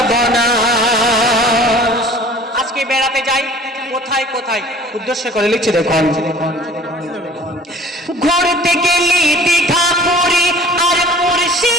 আজকে বেড়াতে যাই কোথায় কোথায়, উদ্দেশ্য করে লিখছি দেখুন। ঘুরতে গেলি দীঘা পুরী আর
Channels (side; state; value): both; normal; correlation 0.48